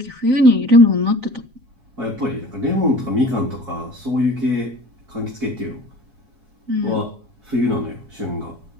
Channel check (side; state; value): left; late; 7.3 ms